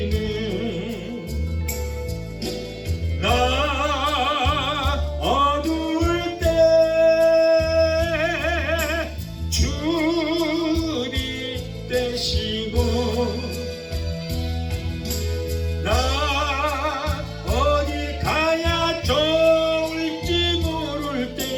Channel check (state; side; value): identical; both; correlation 1.00